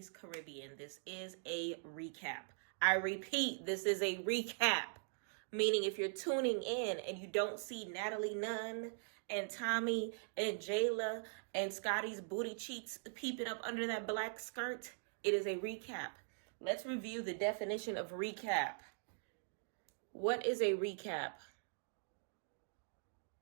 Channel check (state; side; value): silent; left; digital silence